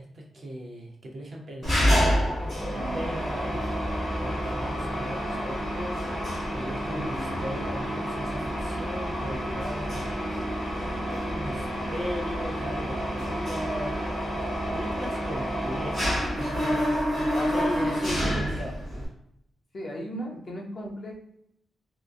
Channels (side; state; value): both; normal; correlation 0.90